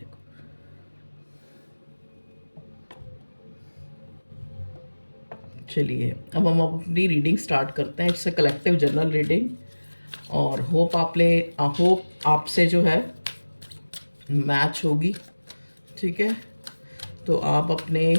चलिए अब हम अपनी रीडिंग स्टार्ट करते हैं। It's a collective general reading और होप आपसे जो है मैच होगी। ठीक है, तो आप अपने,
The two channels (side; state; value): both; inverted; correlation -1.00